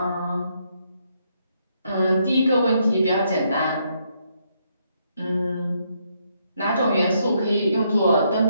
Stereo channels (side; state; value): both; inverted; correlation -0.75